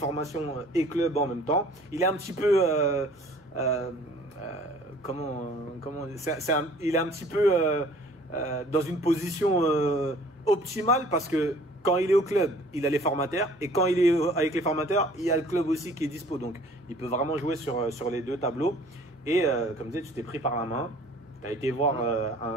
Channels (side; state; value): both; normal; correlation 0.52